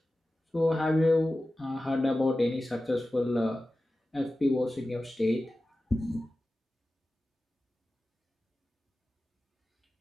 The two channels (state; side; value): normal; both; correlation 0.95